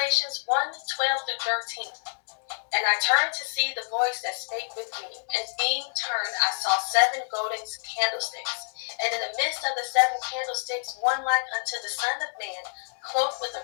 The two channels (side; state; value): right; silent; digital silence